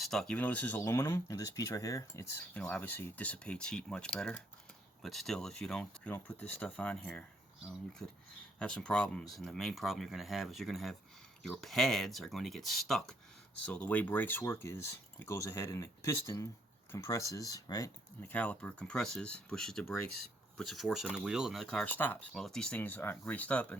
Even though this is aluminum, and this piece right here, it's obviously dissipates heat much better. But still, if you don't put this stuff on here, you could have some problems. And the main problem you're going to have is your pads are going to get stuck. So the way brakes work is it goes ahead and the piston compresses, right? And the caliper compresses, pushes the brakes, puts a force on the wheel, and the car stops. Well, if these things aren't greased up and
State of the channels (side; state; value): both; normal; correlation 0.70